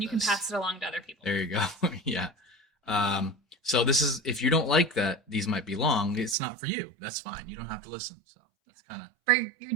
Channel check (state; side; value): drops out; left; at 6.4 s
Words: you can this. pass it along to other people. There you go. Yeah. So this is, if you don't like that these might be long, it's not for you. That's fine. You don't have to listen. So that's kind of But you're